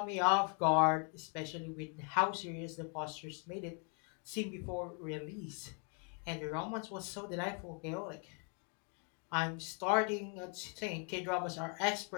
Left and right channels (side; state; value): right; quieter; 39.9 dB